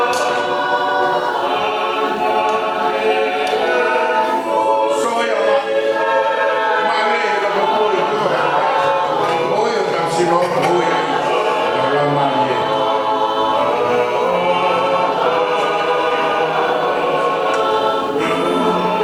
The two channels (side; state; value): both; identical; correlation 1.00